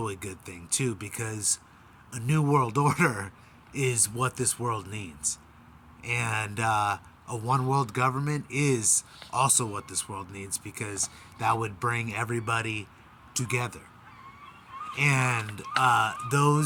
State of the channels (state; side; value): identical; both; correlation 1.00